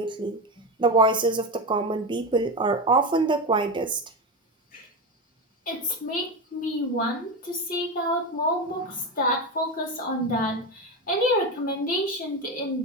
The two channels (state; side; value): normal; both; correlation 0.17